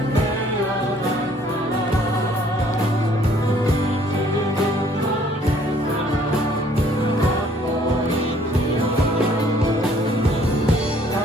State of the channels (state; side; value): normal; both; correlation 0.60